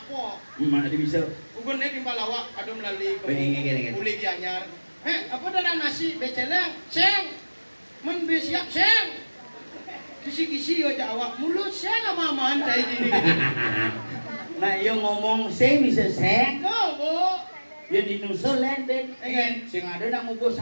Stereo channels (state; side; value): inverted; both; correlation -1.00